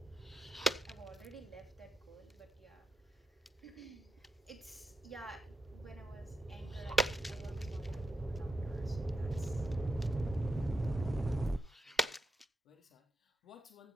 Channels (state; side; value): normal; both; correlation 0.84